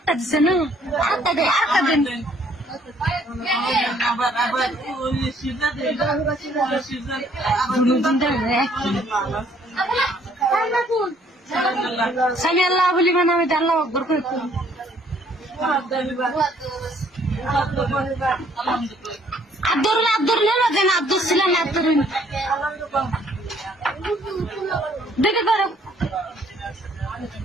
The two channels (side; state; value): both; normal; correlation 0.63